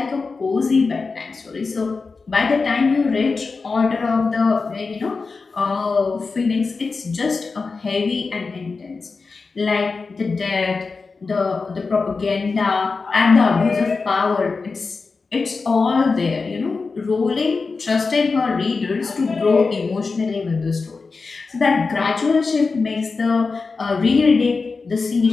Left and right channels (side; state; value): right; quieter; 4.3 dB